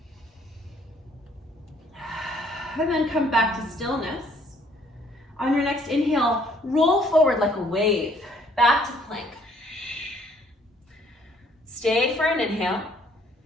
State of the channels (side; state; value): both; normal; correlation 0.63